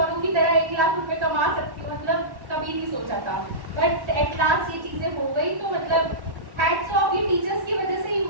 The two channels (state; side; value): late; left; 1.1 ms